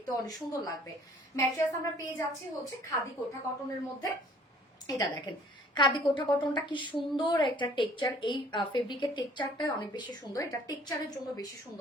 অনেক সুন্দর লাগবে। ম্যাট্রেস আমরা পেয়ে যাচ্ছি হচ্ছে খাদি কোঠা কটনের মধ্যে। এটা দেখেন খাদি কোঠা কটনটা কি সুন্দর একটা টেক্সচার, এই ফেব্রিকের টেক্সচারটা অনেক বেশি সুন্দর, এটা টেক্সচারের জন্য বেশি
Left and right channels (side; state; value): both; normal; correlation 0.55